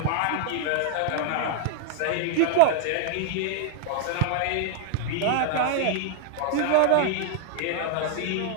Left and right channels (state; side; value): different; both; correlation 0.00